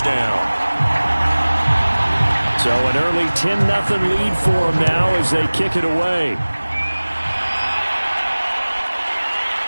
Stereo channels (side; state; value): both; inverted; correlation -1.00